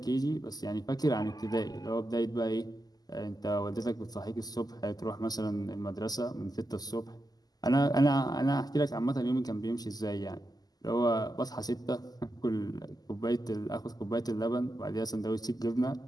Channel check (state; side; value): late; right; 0.19 ms